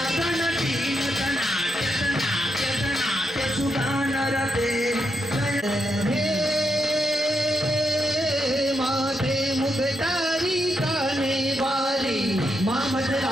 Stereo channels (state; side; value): normal; both; correlation 0.82